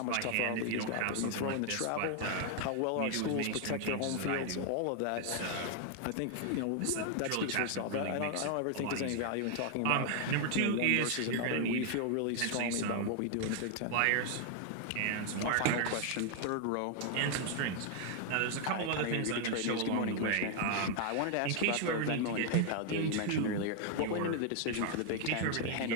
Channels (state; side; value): different; both; correlation 0.00